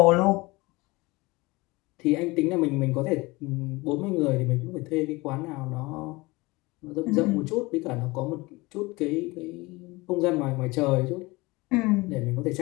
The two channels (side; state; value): right; quieter; 22.9 dB